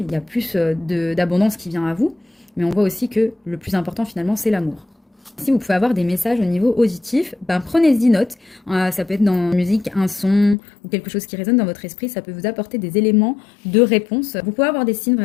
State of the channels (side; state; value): right; drops out; at 10.6 s